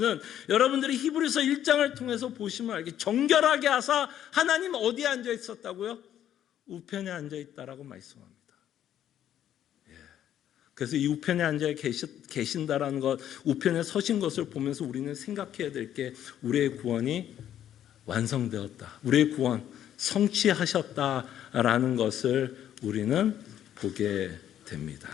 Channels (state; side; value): quieter; right; 10.8 dB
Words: 여러분들이 히브리서 1장을 통해서 보시면 알게 정결하게 하사 하나님 어디에 앉아 있었다고요? 우편에 앉아 있다라고 말씀합니다. 그래서 이 우편에 앉아 계신다라는 것, 우편에 서신 것을 보면서 우리는 생각해야 될 게 우리의 구원이 완성되었다. 우리의 구원 성취하셨다라는 것을 우리는 보게 됩니다.